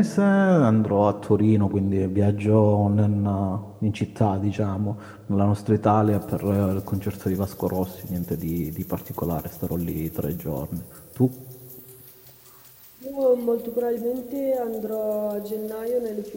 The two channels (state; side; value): identical; both; correlation 1.00